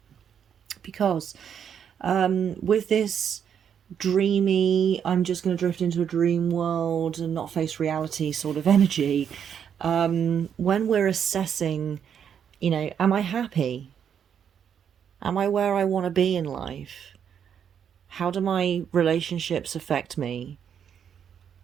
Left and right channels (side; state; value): left; quieter; 8.2 dB